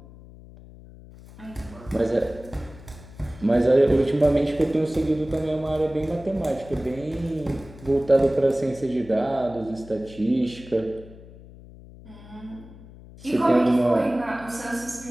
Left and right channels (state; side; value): noise; left; hum, 19 dB below the sound